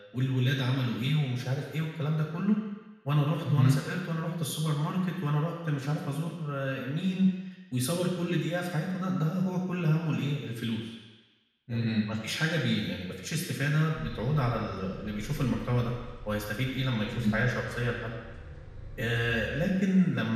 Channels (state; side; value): identical; both; correlation 1.00